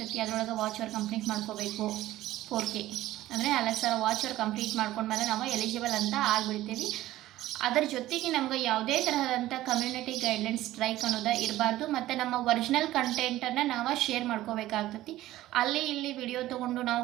ಅದರೊಳಗೆ ವಾಚ್ ಅವರ್ ಕಂಪ್ಲೀಟ್ ಮಾಡ್ಕೋಬೇಕು. 4K ಅಂದರೆ 4000 ವಾಚ್ ಅವರ್ ಕಂಪ್ಲೀಟ್ ಮಾಡ್ಕೊಂಡ್ಮೇಲೆ ನಾವು ಎಲಿಜಿಬಲ್ ಅಂತ ಆಗಿಬಿಡ್ತೀವಿ. ಅದರ ಜೊತೆಗೆ ನಮ್ಗೆ ಯಾವುದೇ ತರಹದಂಥ ಕಮ್ಯುನಿಟಿ ಗೈಡ್ಲೈನ್ಸ್ ಸ್ಟ್ರೈಕ್ ಅನ್ನೋದು ಇರಬಾರ್ದು. ಮತ್ತು ನಮ್ಮ ಒರಿಜಿನಲ್ ಕಂಟೆಂಟನ್ನು ನಾವು ಶೇರ್ ಮಾಡ್ಕೋಬೇಕಾಗ್ತೈತಿ. ಅಲ್ಲಿ ಇಲ್ಲಿ ವಿಡಿಯೋ ತೊಗೊಂಡು ನಾವು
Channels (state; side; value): quieter; left; 15.3 dB